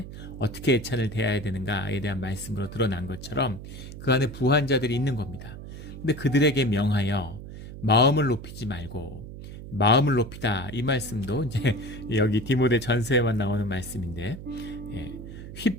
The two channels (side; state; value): right; noise; hum, 12 dB below the sound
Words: 어떻게 애찬을 대해야 되는가에 대한 말씀으로 드러난 것처럼 그 안에 부한 자들이 있는 겁니다. 근데 그들에게 명하여 마음을 높이지 말고, 마음을 높이다, 이 말씀도 이제 여기 디모데 전서에만 나오는 말씀인데,